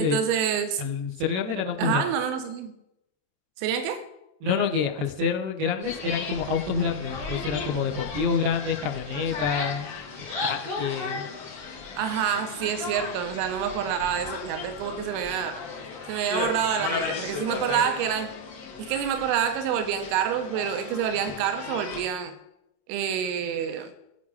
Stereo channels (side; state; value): left; late; 27 ms